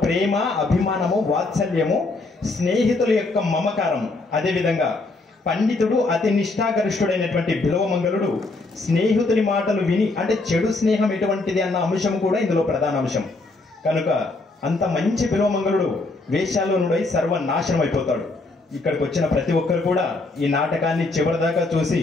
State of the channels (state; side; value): quieter; right; 3.3 dB